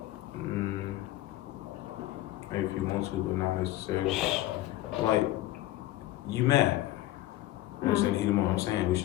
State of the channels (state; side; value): quieter; right; 15.6 dB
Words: Maybe if you want to, but not necessarily. Like, you mad. You understand the heat of the moment. I'm saying we